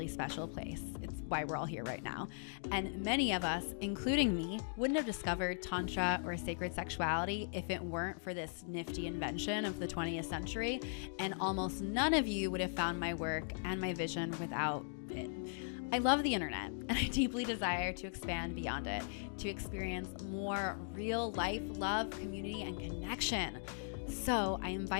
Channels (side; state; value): right; silent; digital silence